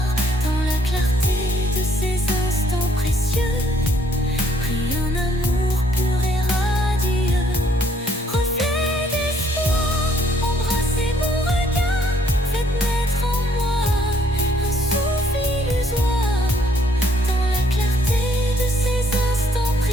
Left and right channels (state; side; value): normal; both; correlation 0.66